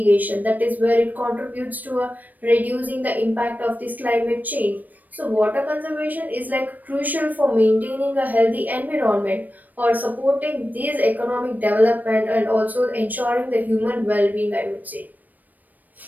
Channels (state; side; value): late; left; 0.084 ms